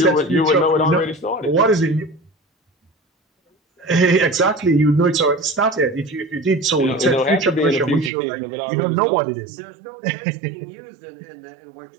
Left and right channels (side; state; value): left; drops out; at 8.1 s